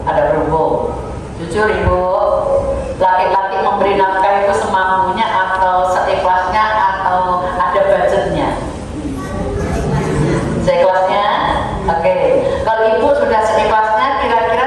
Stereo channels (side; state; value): both; identical; correlation 1.00